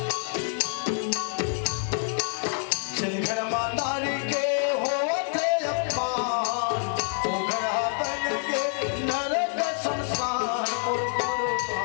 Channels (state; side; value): silent; right; 56 dB below the other